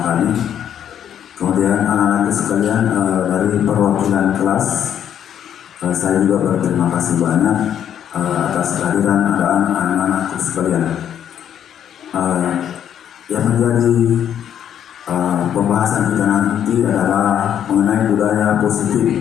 kami. Kemudian anak-anak sekalian dari perwakilan kelas, saya juga berterima kasih banyak atas kehadiran anak-anak sekalian. Yang menjadi pembahasan kita nanti adalah mengenai budaya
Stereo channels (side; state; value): right; quieter; 9.6 dB